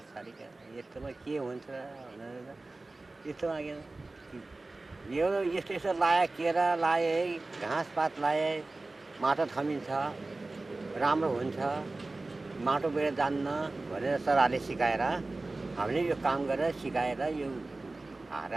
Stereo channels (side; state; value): left; quieter; 3.2 dB